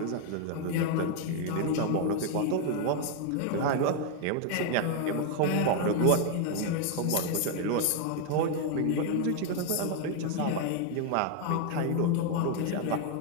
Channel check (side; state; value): both; different; correlation 0.01